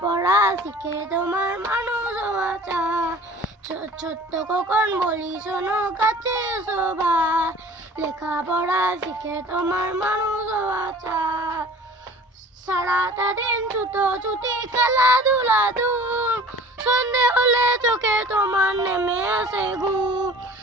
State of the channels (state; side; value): normal; both; correlation 0.45